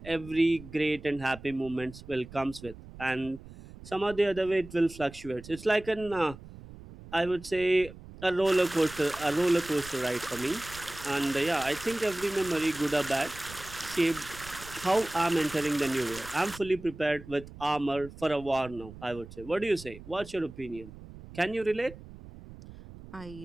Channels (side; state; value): right; noise; rumble, 16 dB below the sound